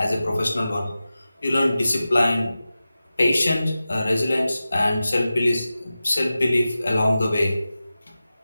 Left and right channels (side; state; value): both; inverted; correlation -0.94